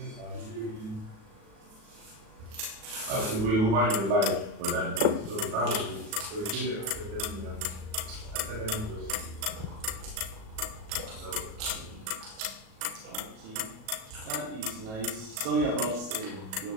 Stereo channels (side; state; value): left; late; 37 ms